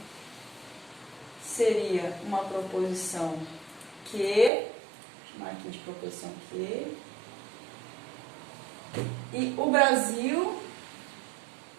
seria uma proposição Q. Vou chamar aqui de proposição Q. E o Brasil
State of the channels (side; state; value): left; drops out; at 4.5 s